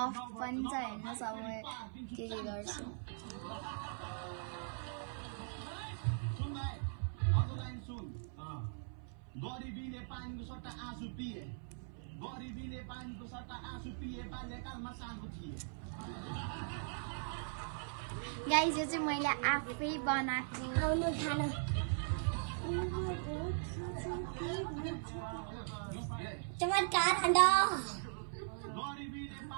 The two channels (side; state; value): left; silent; 51 dB below the other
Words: पनि छ हैन। सब के गर्छु गरिबीले पानीको सट्टा आँसु पिए, गरिबीले पानीको सट्टा आँसु पिए, बाल्यकालमा सानो थिए। गाइस, यो चाहिँ मैले आफै बनाएको आउनु खान। चमत्कार खण्ड